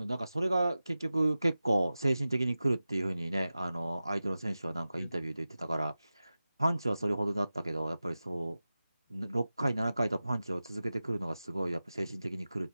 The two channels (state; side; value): inverted; both; correlation -0.95